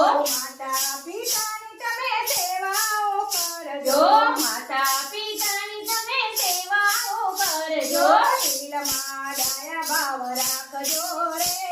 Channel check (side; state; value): both; identical; correlation 1.00